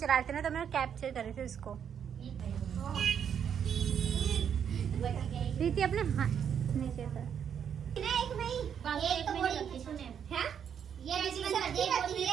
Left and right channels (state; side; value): quieter; left; 8.2 dB